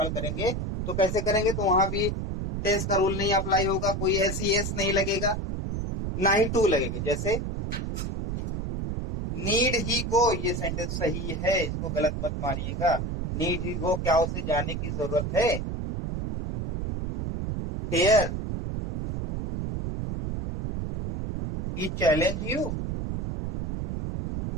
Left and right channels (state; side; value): noise; right; rumble, 3 dB below the sound